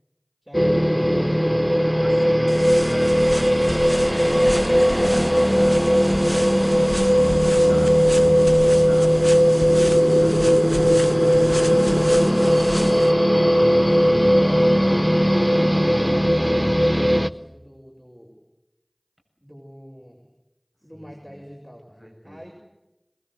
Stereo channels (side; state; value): both; identical; correlation 1.00